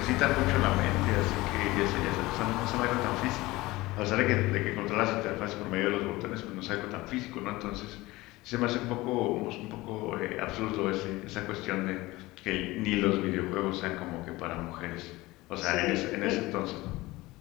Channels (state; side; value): quieter; right; 20.0 dB